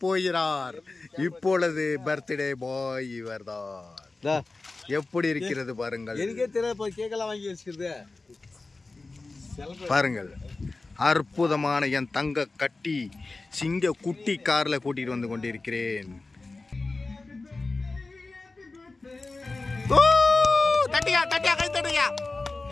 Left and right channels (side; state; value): right; quieter; 3.5 dB